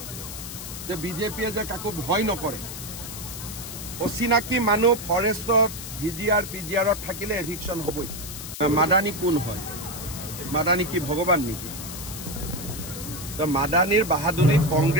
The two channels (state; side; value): noise; left; hiss, 9 dB below the sound